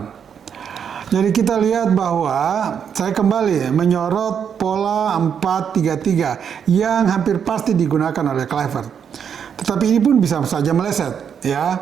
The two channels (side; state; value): left; quieter; 7.7 dB